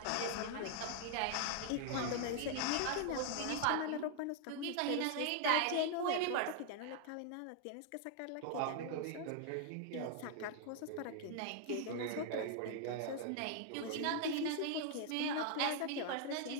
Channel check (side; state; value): both; different; correlation 0.00